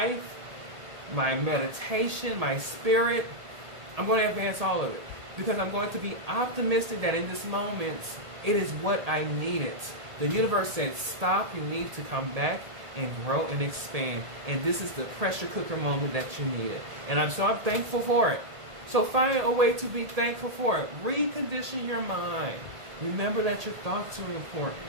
my meditation, my spirit. I'm going to advance all of it because I'm going to be optimistic that in this moment, it is what I needed. The universe said, stop, you need to come back and grow and expand. And this is the pressure cooker moment that you needed. And I'm thankful for it. So find a way to be thankful for it. Recondition your mind. Remember that your thoughts are important.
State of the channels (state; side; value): late; left; 1.8 ms